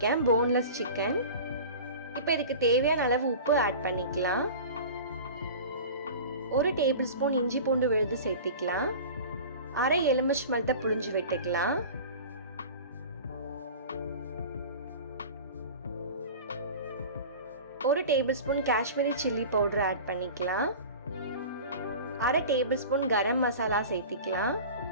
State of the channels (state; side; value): inverted; both; correlation -0.36